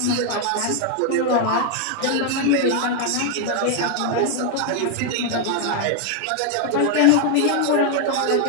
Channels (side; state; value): both; different; correlation 0.00